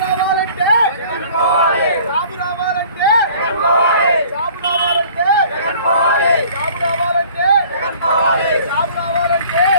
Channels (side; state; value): both; inverted; correlation -0.51